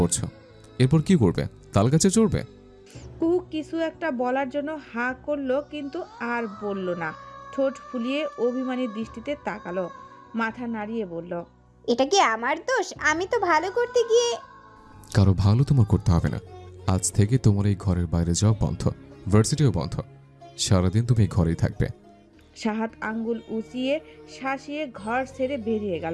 এরপর কি করবে? তাল গাছে চড়বে? কুহু কিছু একটা বলার জন্য হা করলো, কিন্তু আর বলল না। ঠোঁট ফুলিয়ে অভিমানী দৃষ্টিতে তাকালো, মাথা নাড়িয়ে বলল, এটা কি আমার দোষ? আমি তো ভালো করতে গিয়ে। কারো ভালো তোমার করতে হবে না। আজ থেকে তোমার এই ঘরের বাইরে যাওয়া বন্ধ, ভার্সিটিও বন্ধ। সারাদিন তুমি এই ঘরেই থাকবে। শাহাদ আঙ্গুল উঁচিয়ে শাসিয়ে ঘর ছেড়ে বেরিয়ে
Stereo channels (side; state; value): both; identical; correlation 1.00